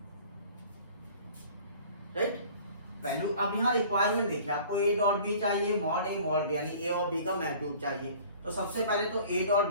right. Value अब यहाँ रिक्वायरमेंट देखिए, आपको a डॉट b चाहिए, मॉड a मॉड b, यानी a और b का मैग्नीट्यूड चाहिए। तो सबसे पहले तो a डॉट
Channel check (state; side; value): inverted; both; correlation -0.48